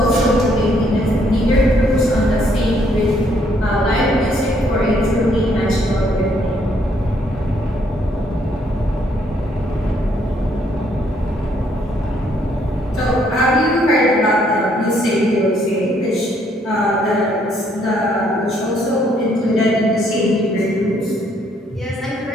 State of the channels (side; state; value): both; normal; correlation 0.69